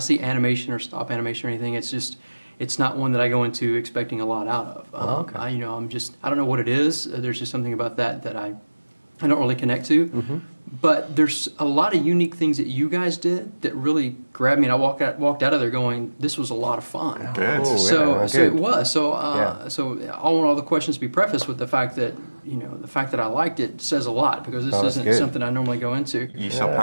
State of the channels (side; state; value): both; inverted; correlation -1.00